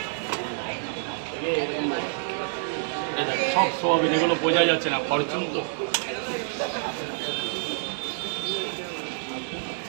সব সোয়াবিন, এগুলো বোঝা যাচ্ছে না, ফরচুন তো।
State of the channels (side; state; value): left; silent; digital silence